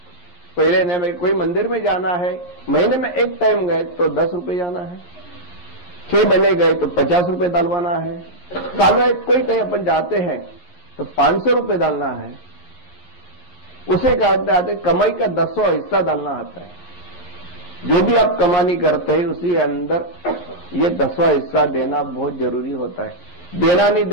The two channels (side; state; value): right; late; 11 ms